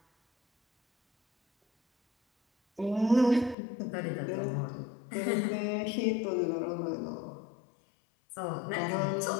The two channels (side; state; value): right; drops out; at 3.6 s